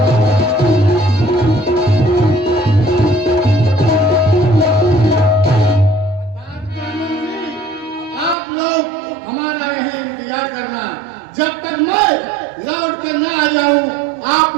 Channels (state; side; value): drops out; left; at 8.3 s